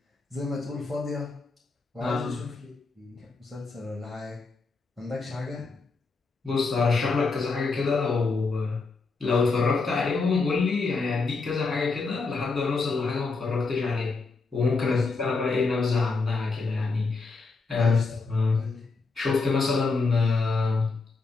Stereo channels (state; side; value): quieter; right; 4.1 dB